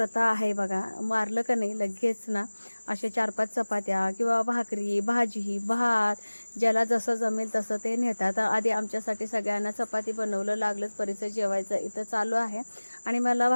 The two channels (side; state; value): both; inverted; correlation -1.00